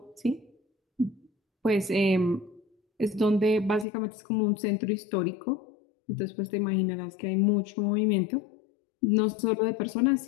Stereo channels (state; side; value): drops out; right; at 3.9 s